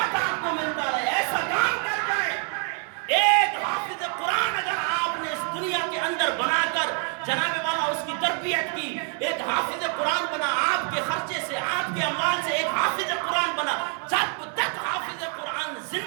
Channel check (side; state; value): left; quieter; 39.7 dB